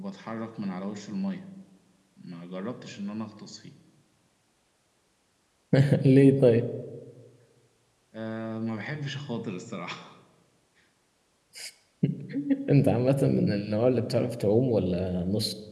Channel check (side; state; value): both; identical; correlation 1.00